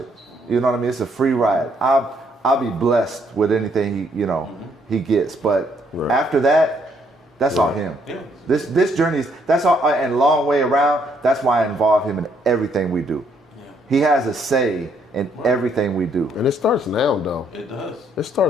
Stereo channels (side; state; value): both; normal; correlation 0.70